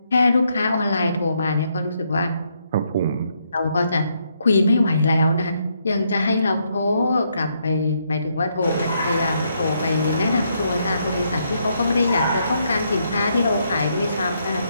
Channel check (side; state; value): both; inverted; correlation -0.76